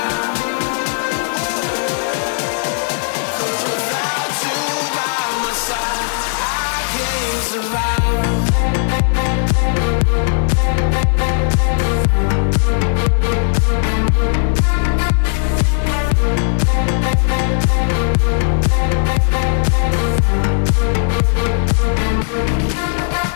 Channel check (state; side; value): silent; right; 65 dB below the other